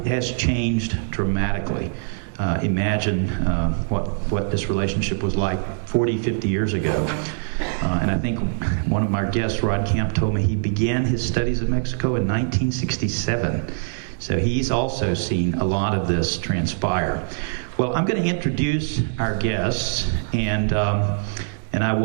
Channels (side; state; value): left; silent; 64 dB below the other